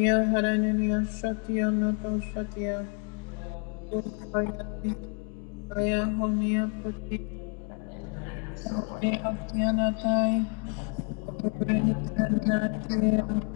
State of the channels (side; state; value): right; quieter; 39.1 dB